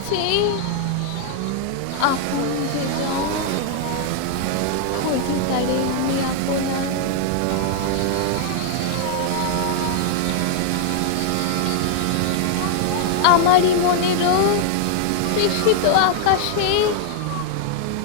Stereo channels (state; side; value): different; both; correlation 0.00